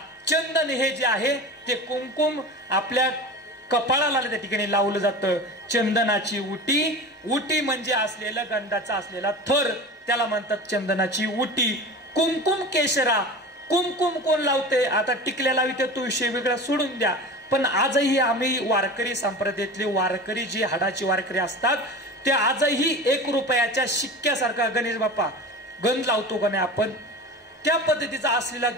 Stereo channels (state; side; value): normal; both; correlation 0.33